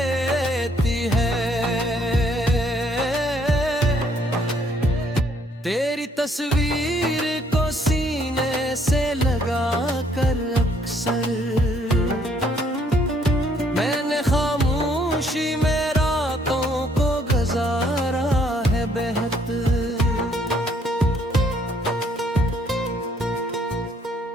है। तेरी तस्वीर को सीने से लगा कर अक्सर मैंने खामोशी में रातों को गुजारा है बेहतर।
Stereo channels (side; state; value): both; normal; correlation 0.66